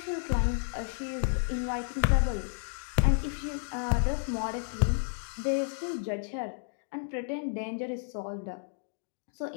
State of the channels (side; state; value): right; silent; digital silence